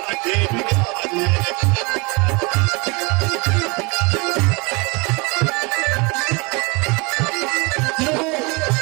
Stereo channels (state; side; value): quieter; left; 28.0 dB